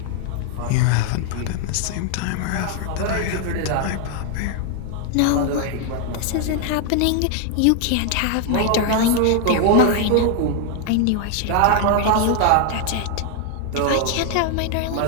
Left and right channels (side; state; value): both; different; correlation 0.00